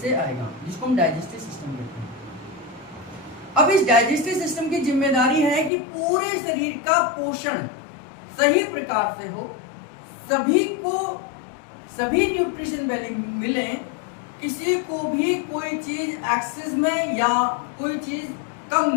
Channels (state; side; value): drops out; right; at 5.7 s